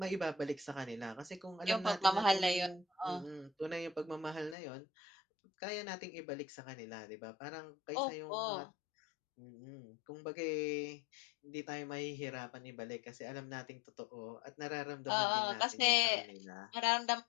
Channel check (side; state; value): right; drops out; at 4.5 s